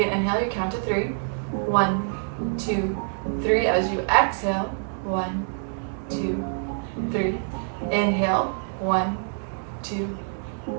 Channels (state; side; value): silent; left; digital silence